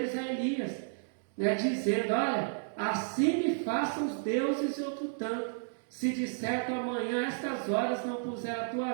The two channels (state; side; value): silent; left; digital silence